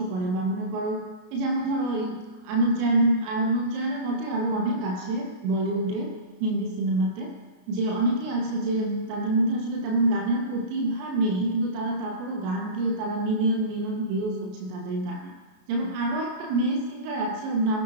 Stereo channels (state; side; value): late; left; 33 ms